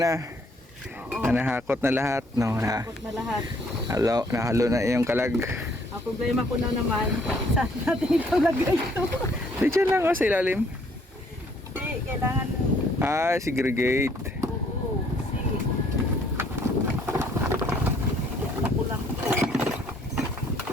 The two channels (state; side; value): normal; both; correlation 0.64